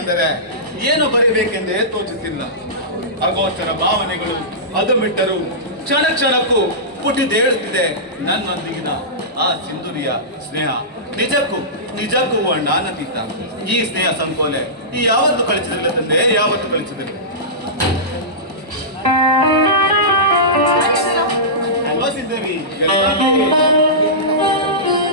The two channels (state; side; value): normal; both; correlation -0.18